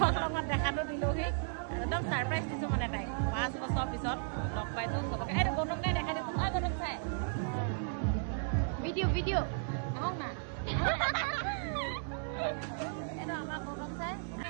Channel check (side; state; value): left; silent; 55 dB below the other